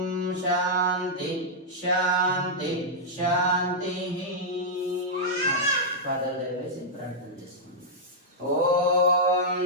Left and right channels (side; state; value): both; normal; correlation -0.08